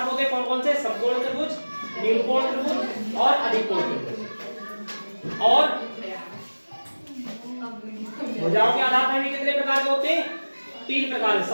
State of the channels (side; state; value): both; inverted; correlation -1.00